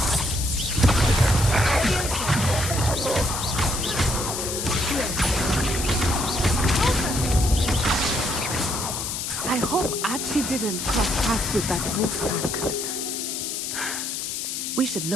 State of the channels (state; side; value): noise; left; hiss, 4 dB below the sound